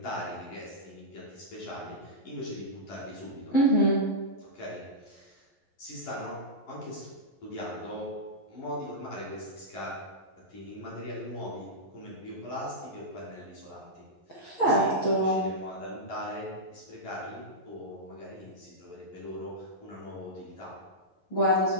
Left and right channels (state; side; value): late; right; 11 ms